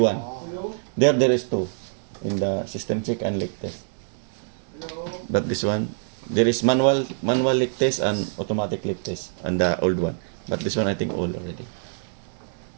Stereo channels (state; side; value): silent; left; digital silence